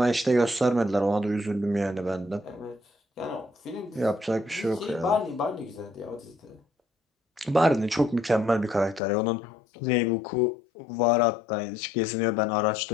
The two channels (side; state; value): right; drops out; at 9.0 s